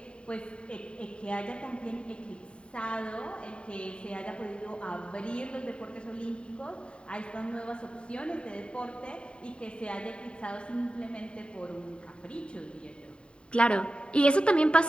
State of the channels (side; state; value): right; late; 0.054 ms